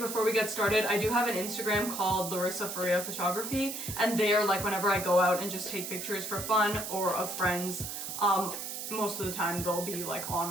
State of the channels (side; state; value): right; noise; hiss, 6 dB below the sound